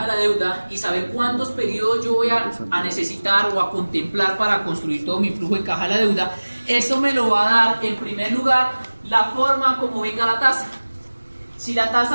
de la deuda y saber cuántos periodos yo voy a necesitar o a contemplar para construir todo mi flujo de caja de la deuda, eso me lo va a dar en primer lugar la forma como venga la tasa. Si la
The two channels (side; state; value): both; inverted; correlation -1.00